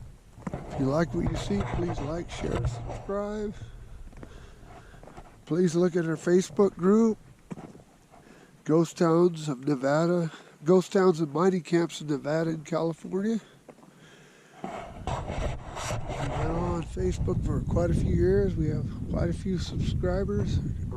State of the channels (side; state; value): both; identical; correlation 1.00